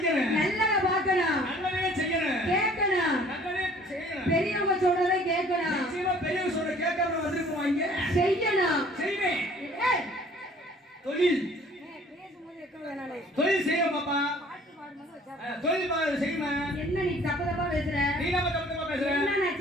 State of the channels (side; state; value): both; normal; correlation 0.53